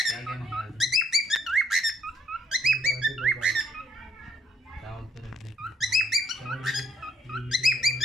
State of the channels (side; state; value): both; normal; correlation 0.66